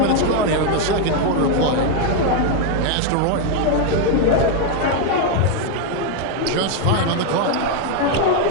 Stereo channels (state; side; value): different; both; correlation 0.01